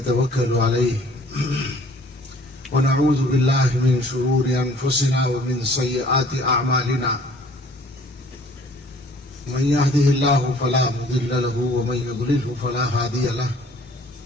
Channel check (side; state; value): both; normal; correlation 0.55